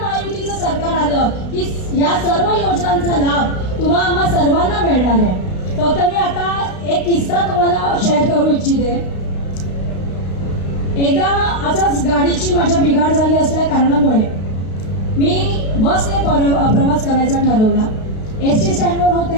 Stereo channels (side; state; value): right; late; 32 ms